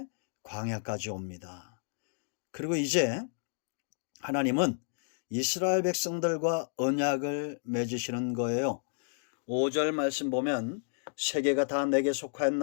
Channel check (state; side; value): silent; right; digital silence